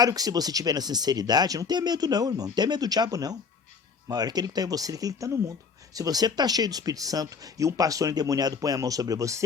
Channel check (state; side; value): quieter; right; 5.4 dB